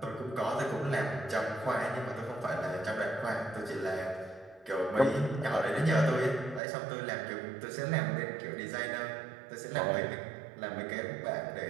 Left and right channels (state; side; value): drops out; left; at 6.6 s